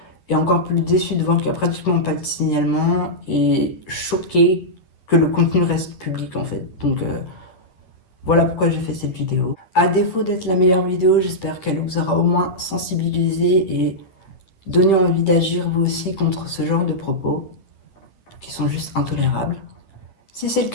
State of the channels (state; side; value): late; right; 10 ms